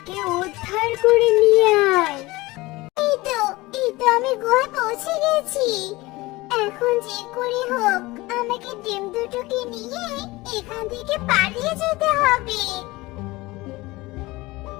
উদ্ধার করে নিয়ে আয়। এই তো আমি গুহায় পৌঁছে গেছি। এখন যে করে হোক আমাকে ডিম দুটোকে নিয়ে এখান থেকে পালিয়ে যেতে হবে।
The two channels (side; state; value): right; quieter; 20.8 dB